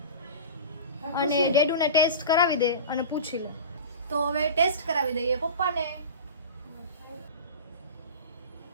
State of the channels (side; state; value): both; inverted; correlation -0.32